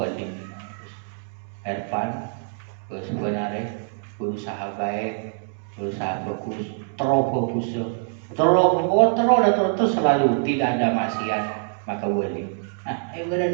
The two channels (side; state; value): left; silent; 62 dB below the other